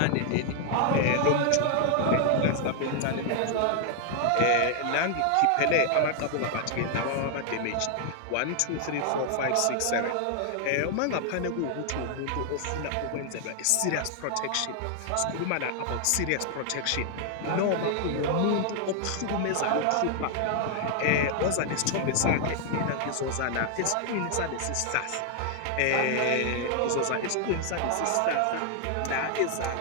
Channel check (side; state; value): both; different; correlation 0.00